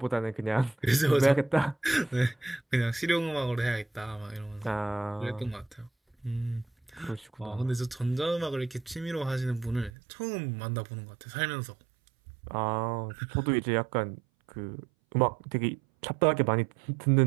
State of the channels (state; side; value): drops out; left; at 9.9 s